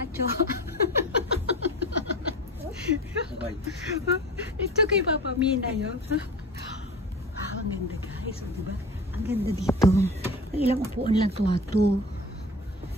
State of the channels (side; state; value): both; normal; correlation 0.35